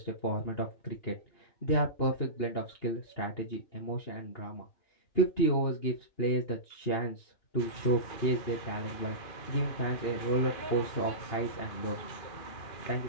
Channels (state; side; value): late; right; 2.5 ms